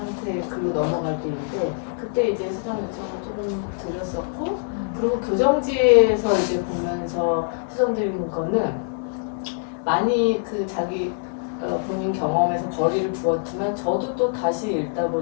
글로 넘어갈 때인데 그때 이제 수정 요청을 조금 드렸었고 그리고 교정지에서 이제 보면서 수정드리는 거는 많이 그 자기 본인 경험에서 거리를 두었지만 저도 또 다시 읽다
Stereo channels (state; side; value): silent; right; digital silence